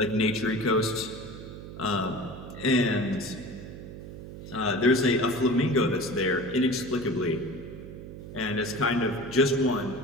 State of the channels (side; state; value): right; noise; hum, 12 dB below the sound